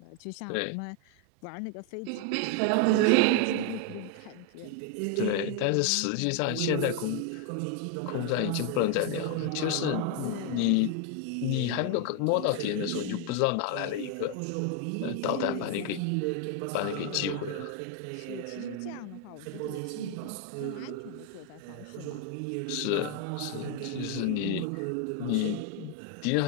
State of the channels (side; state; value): both; different; correlation 0.01